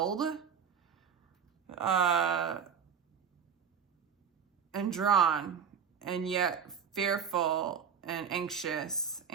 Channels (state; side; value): quieter; left; 7.3 dB